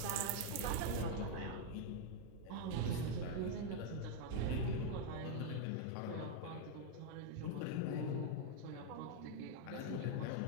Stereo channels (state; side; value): different; both; correlation 0.00